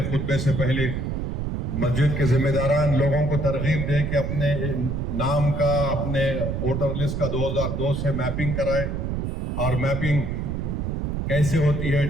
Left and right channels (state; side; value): noise; right; rumble, 2 dB below the sound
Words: खुतबे से पहले, मस्जिद के जिम्मेदारान लोगों को तरगीब दे कि अपने नाम का, अपने वोटर लिस्ट का 2002 से मैपिंग कराए, और मैपिंग कैसे होती है,